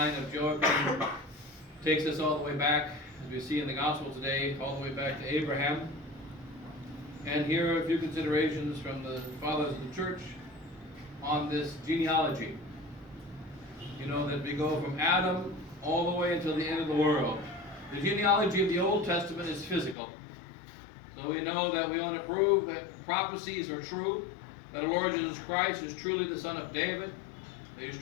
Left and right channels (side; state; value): right; drops out; at 20.0 s